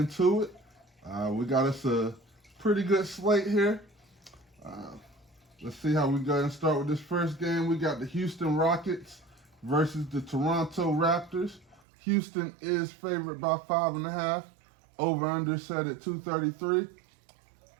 it. We got us a pretty good slate here. Let's see how we go and start with this first game. We got the Houston Rockets versus the Toronto Raptors. Houston is favored by 5.5. Over-under set at 233.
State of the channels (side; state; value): left; drops out; at 11.8 s